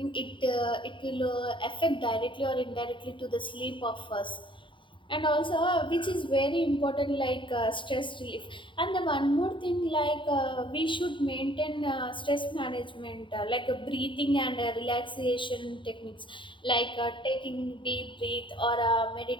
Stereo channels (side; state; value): right; late; 0.24 ms